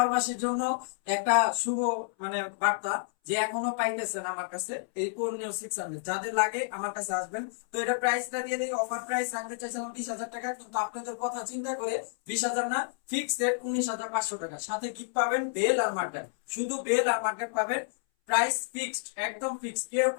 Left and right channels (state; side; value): silent; right; 58 dB below the other